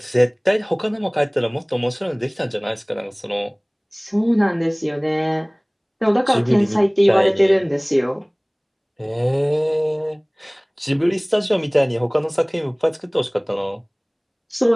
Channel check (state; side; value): identical; both; correlation 1.00